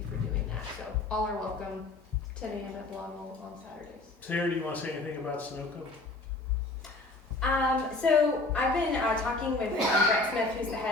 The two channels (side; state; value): right; quieter; 3.1 dB